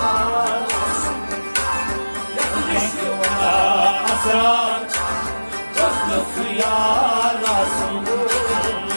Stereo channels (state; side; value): inverted; both; correlation -1.00